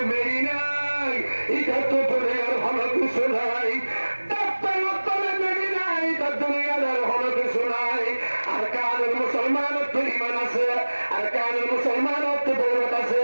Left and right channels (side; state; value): both; inverted; correlation -1.00